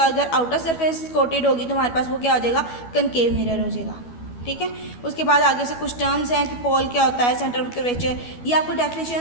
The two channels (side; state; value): right; late; 12 ms